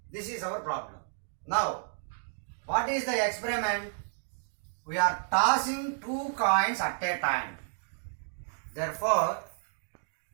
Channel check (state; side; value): silent; left; digital silence